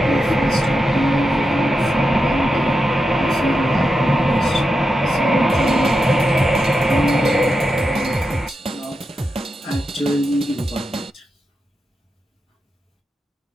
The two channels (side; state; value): both; normal; correlation 0.88